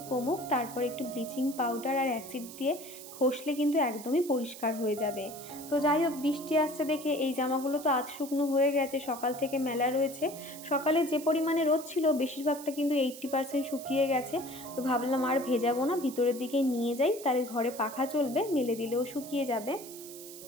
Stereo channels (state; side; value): noise; right; hiss, 14 dB below the sound